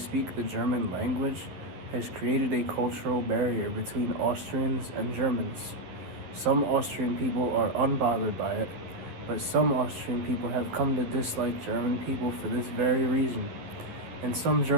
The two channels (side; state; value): left; late; 11 ms